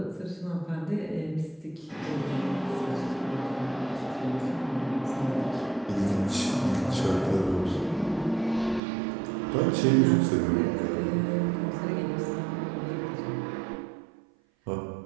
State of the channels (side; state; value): left; drops out; at 8.8 s